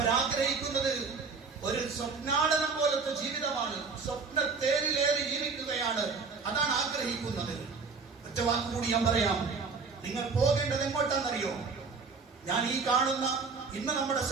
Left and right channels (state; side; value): quieter; left; 4.8 dB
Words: ഒരു സ്വപ്നാടനം പോലത്തെ ജീവിതമാണ്, സ്വപ്ന തേരിലേറി ജീവിക്കുകയാണ്, അതാണ് ആഗ്രഹിക്കുന്നത്. ഒറ്റ വാക്ക് കൂടി ഞാൻ പറയാം. നിങ്ങൾ പോകേണ്ടത് എങ്ങോട്ടാണെന്നറിയോ? ഞാൻ ഈ കാണുന്ന ഇന്ന് നമ്മുടെ